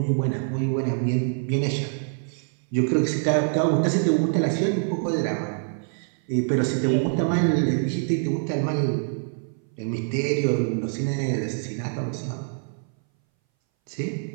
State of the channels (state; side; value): silent; left; 60 dB below the other